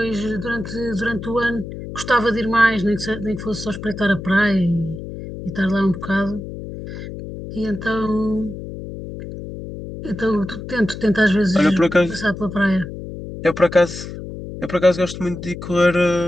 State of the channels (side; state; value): left; noise; hum, 10 dB below the sound